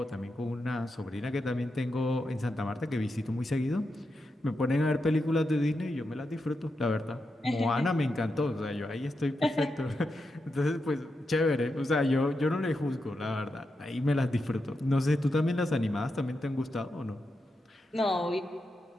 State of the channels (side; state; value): both; normal; correlation 0.87